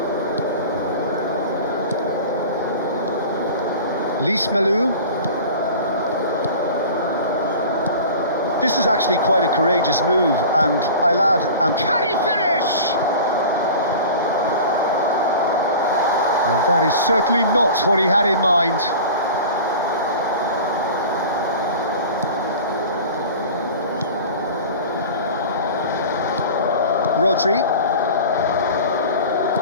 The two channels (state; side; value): inverted; both; correlation -0.37